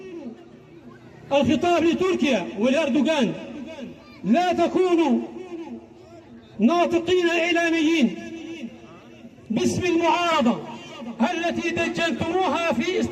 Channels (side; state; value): both; identical; correlation 1.00